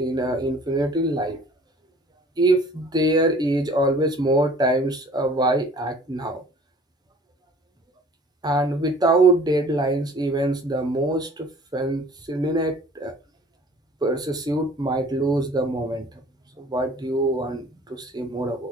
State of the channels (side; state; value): both; normal; correlation 0.50